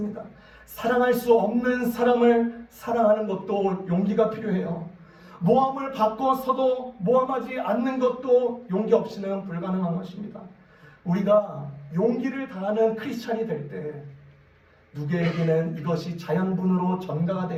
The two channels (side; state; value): both; identical; correlation 1.00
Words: 사랑할 수 없는 사람을 사랑하는 것도 용기가 필요해요. 모함을 받고서도 모함하지 않는 것도 용기 없이는 불가능한 것입니다. 우리가 용기를 다하는 크리스찬이 될 때 누구에게는 이것이 자연분으로 전가가